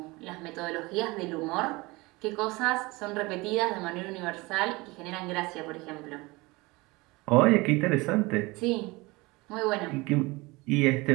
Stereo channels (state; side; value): quieter; left; 23.2 dB